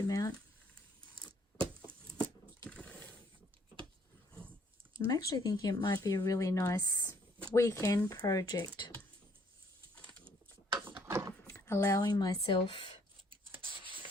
I'm actually thinking it might be a really nice weekend project, allowing myself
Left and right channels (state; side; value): normal; both; correlation 0.65